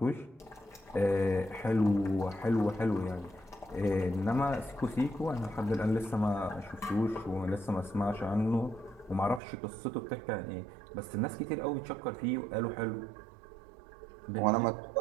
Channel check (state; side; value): drops out; left; at 9.4 s